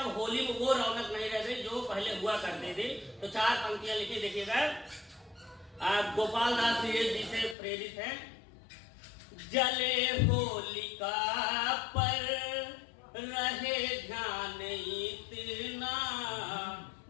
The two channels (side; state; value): right; drops out; at 7.6 s